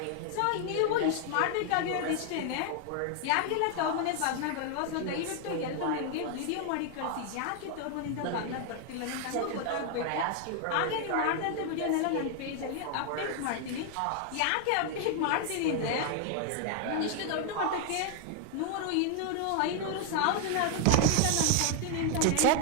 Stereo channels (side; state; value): both; different; correlation 0.00